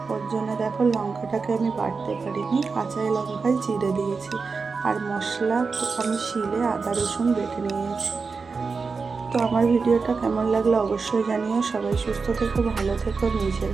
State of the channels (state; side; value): quieter; left; 4.7 dB